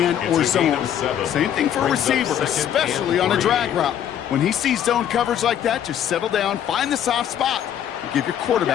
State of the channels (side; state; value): right; quieter; 9.9 dB